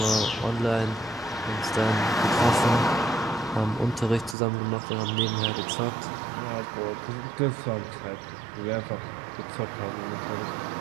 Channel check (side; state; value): left; drops out; at 4.4 s